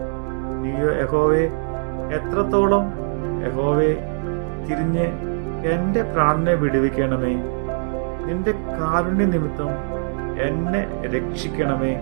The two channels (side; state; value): left; silent; 64 dB below the other